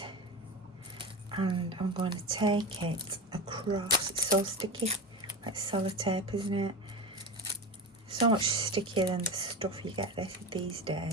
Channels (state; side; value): normal; both; correlation 0.24